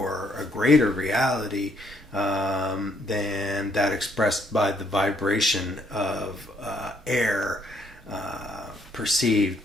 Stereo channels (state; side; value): normal; both; correlation 0.69